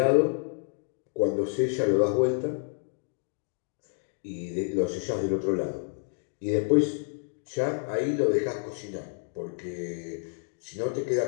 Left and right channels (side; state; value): right; silent; digital silence